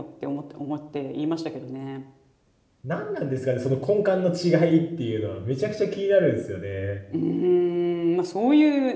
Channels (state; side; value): identical; both; correlation 1.00